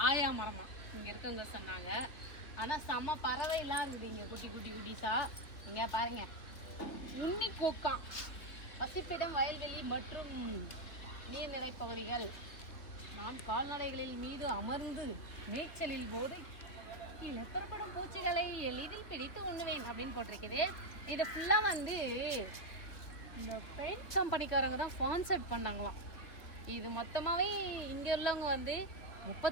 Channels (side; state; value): right; late; 3.6 ms